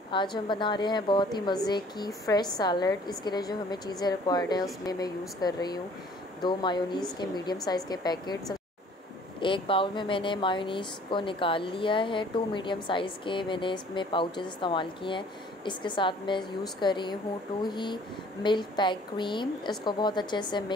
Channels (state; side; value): normal; both; correlation 0.54